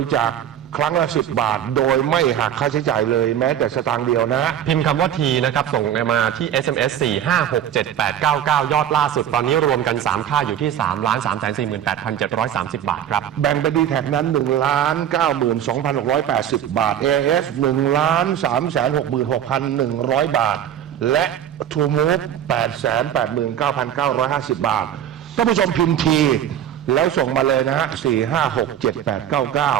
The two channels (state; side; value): quieter; left; 10.1 dB